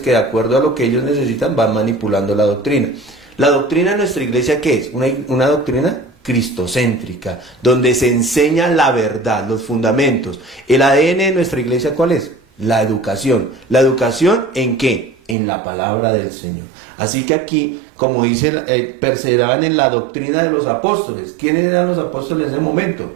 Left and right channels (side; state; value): left; drops out; at 15.4 s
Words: de acuerdo a lo que ellos necesitan van manipulando la doctrina. La doctrina de nuestra iglesia, ¿qué es? Una doctrina cristocéntrica, donde se enseña la verdad, los fundamentos. El ADN de nuestra iglesia, ¿cuál es? La educación. ¿La educación en qué? En la palabra del Señor. Así que aquí, como dice, perseveraban en la doctrina de los apóstoles. ¿Quiénes eran los apóstoles en ese momento?